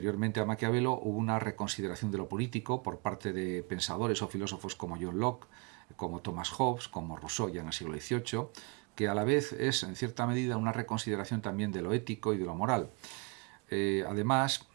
a Maquiavelo hubo una reconsideración de lo político por parte de pensadores o filósofos como John Locke, como Thomas Hobbes, como Rousseau ya en el siglo XVIII, que a la vez es en cierta medida una reconsideración también de lo ético y de lo moral. Además,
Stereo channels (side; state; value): left; quieter; 30.7 dB